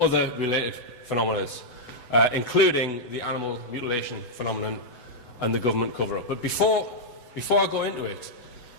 related phenomena, including the animal mutilation phenomenon and the government cover-up. But before I go into it,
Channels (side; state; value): right; late; 8.0 ms